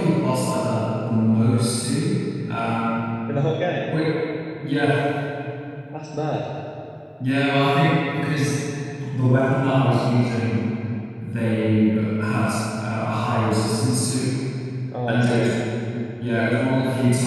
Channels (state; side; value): identical; both; correlation 1.00